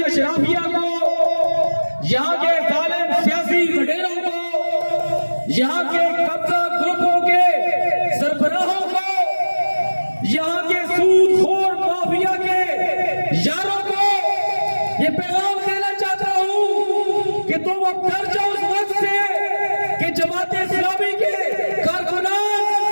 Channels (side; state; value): both; inverted; correlation -1.00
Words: اشرافیہ کو, یہاں کے ظالم سیاسی وڈیروں کو, یہاں کے قبضہ گروپوں کے سربراہوں کو, یہاں کے سود خور مافیا کے یاروں کو یہ پیغام دینا چاہتا ہوں کہ تم اب ڈر جاؤ اس وقت سے کہ جماعت اسلامی کے کارکنان